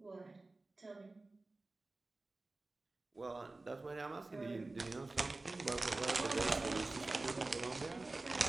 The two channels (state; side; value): quieter; left; 3.2 dB